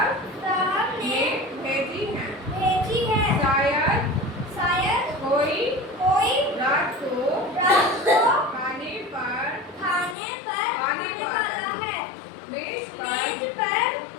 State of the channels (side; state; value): right; drops out; at 10.2 s